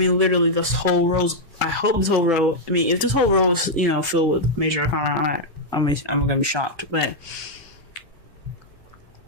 this whole row, if this whole row is, filled with major arcana, I'm gonna be shocked, but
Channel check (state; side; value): late; left; 1.5 ms